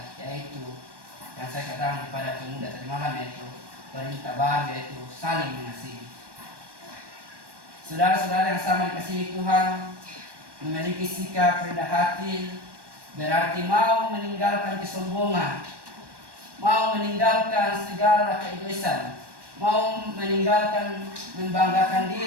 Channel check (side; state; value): left; late; 1.1 ms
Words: yaitu yang saya katakan kepada pemuda tadi malam, yaitu perintah baru, yaitu saling mengasihi. Saudara-saudara yang sama dikasihi Tuhan, memiliki sikap rendah hati berarti mau meninggalkan kesombongan, mau meninggalkan segala keegoisan, mau meninggalkan membanggakan